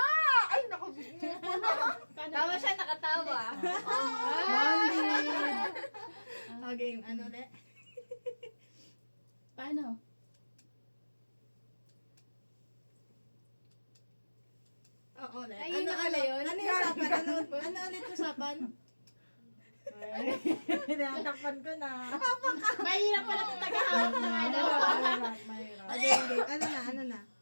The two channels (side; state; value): both; inverted; correlation -1.00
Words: Ay, naku. Tama siya, nakatawa. Okay, ano ulit? Paano? Oo, ulit. Ay, yun na pala yun. Ano yung usapan? Ano ulit yung usapan? Hinatakpan ko na. Mahirap pala kung tagahawak ng ano. Mahirap. Okay. Ano na?